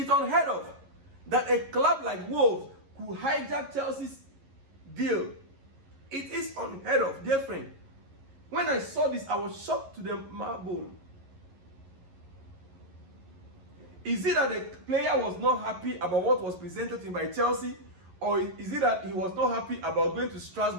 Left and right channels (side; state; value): left; late; 11 ms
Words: unheard of that a club like Wolves could hijack Chelsea's deal. It is unheard of, dear friend. When I saw this, I was shocked to the marrow. Is it that the player was not happy about what was presented to him by Chelsea? Or is it that he was not happy about going to